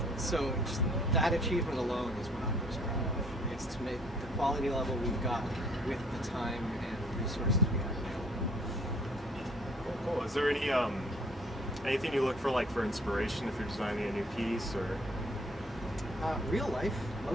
So just that achievement alone is what I'm most proud of. It's to make the quality level we've got with the time and resources we have available. Cool. Is there anything you look for inspiration if you're designing a new piece, or? Real life,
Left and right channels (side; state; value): both; normal; correlation 0.58